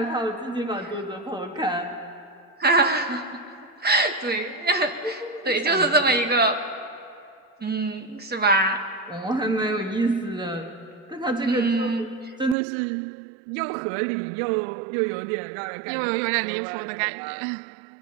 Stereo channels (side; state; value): left; drops out; at 12.6 s